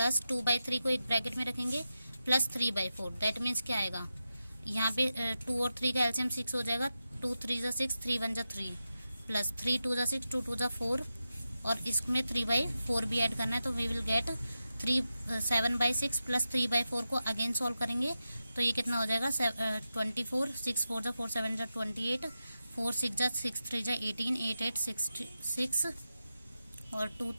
2/3 को एक ब्रैकेट में रखेंगे प्लस 3/4। दैट मीन्स क्या आएगा, यहाँ पे 2 और 3 का एलसीएम 6 हो जाएगा, 2 3 जा 6, 3 1 जा 3, प्लस 3 2 जा 6, 2 2 जा 4, और इसमें 3/4 भी ऐड करना है। तो वी विल गेट 7/6 प्लस 3/4 को अगेन सॉल्व करेंगे, तो ये कितना हो जाएगा 24, 6 4 जा 4 7 जा 28, 4 6 जा 6 3 जा 18, 8 8 6 और 2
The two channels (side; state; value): both; inverted; correlation -0.91